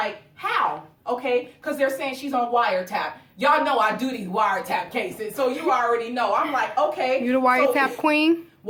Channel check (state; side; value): identical; both; correlation 1.00